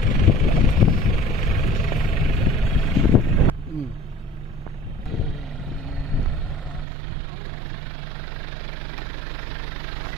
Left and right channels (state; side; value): drops out; left; at 6.9 s